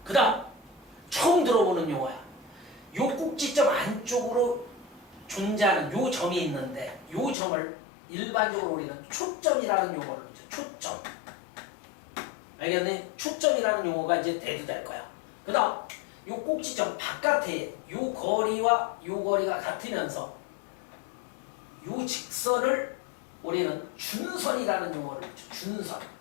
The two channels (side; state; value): right; drops out; at 7.4 s